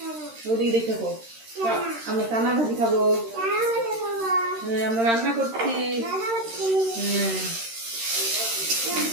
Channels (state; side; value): late; left; 13 ms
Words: ওদিকে দেখে খাবো। আমরা চানা ভাজি খাবো। হ্যাঁ, আমরা রান্না করছি। হ্যাঁ,